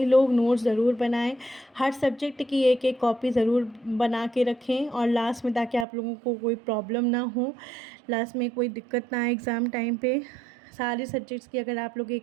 लोग नोट्स ज़रूर बनाएं, हर सब्जेक्ट की एक एक कॉपी ज़रूर बना के रखें, और लास्ट में ताकि आप लोगों को कोई प्रॉब्लम ना हो, लास्ट में कोई दिक्कत ना आए एग्ज़ाम टाइम पे। सारे सब्जेक्ट्स की अगर आप लोग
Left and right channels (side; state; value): left; drops out; at 5.9 s